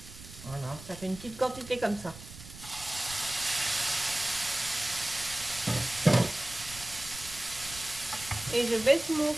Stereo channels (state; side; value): noise; right; rumble, 15 dB below the sound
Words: Voilà, ça fait une petite quantité comme ça. Et je baisse mon